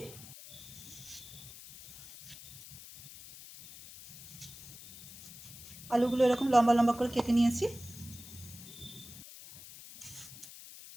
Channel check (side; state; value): left; noise; hiss, 15 dB below the sound